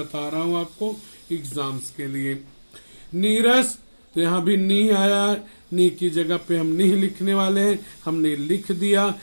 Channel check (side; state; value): both; inverted; correlation -1.00